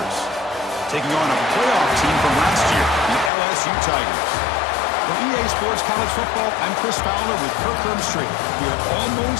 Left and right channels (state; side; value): drops out; right; at 3.3 s